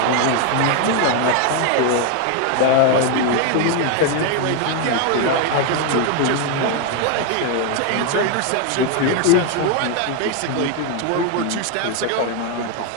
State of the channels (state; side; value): different; both; correlation 0.01